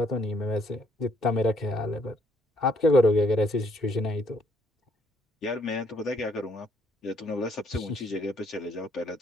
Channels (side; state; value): both; normal; correlation 0.68